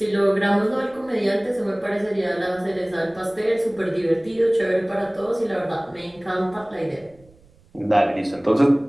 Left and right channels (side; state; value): right; noise; rumble, 29 dB below the sound